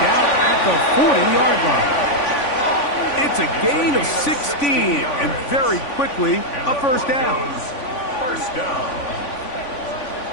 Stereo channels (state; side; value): late; right; 3.5 ms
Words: down at the 40-yard line. It's a gain of 16, and very quickly, a 1st down. 1st down.